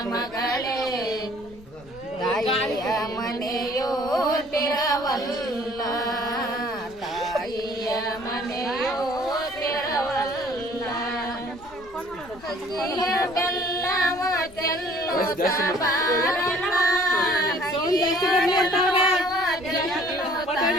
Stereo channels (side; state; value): left; noise; rumble, 23 dB below the sound